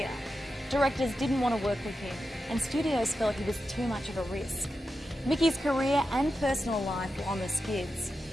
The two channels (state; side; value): normal; both; correlation 0.90